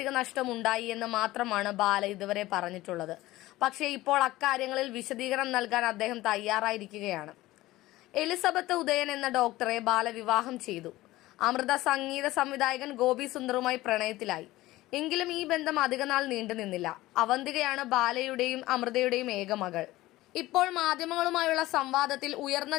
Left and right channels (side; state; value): right; quieter; 17.5 dB